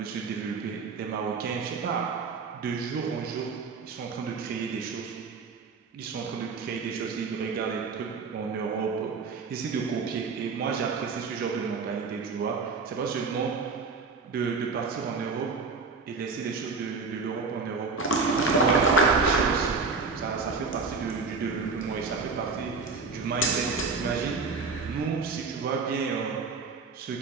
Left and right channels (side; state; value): left; quieter; 4.5 dB